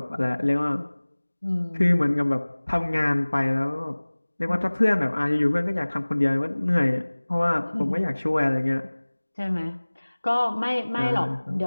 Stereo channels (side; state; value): both; inverted; correlation -1.00